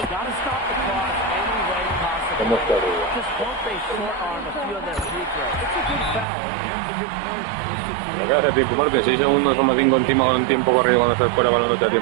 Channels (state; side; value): drops out; left; at 6.2 s